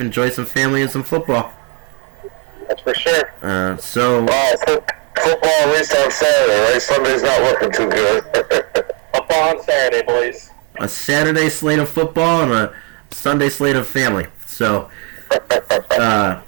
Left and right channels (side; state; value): left; quieter; 34.1 dB